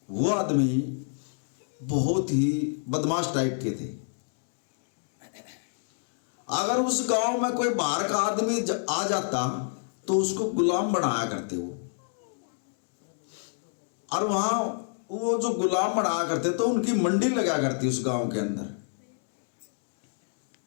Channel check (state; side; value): silent; right; digital silence